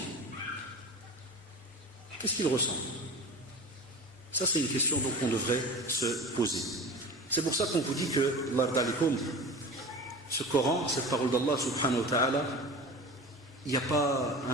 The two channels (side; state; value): both; normal; correlation 0.34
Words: Qu'est-ce qu'il ressent? Ça c'est une question donc qu'on devrait se poser. C'est pour ça qu'on vous dit que ce Coran, cette parole d'Allah subhanahu wa ta'ala, il n'y a pas